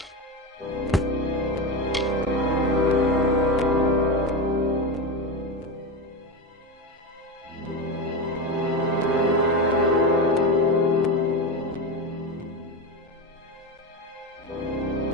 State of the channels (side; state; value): both; normal; correlation 0.17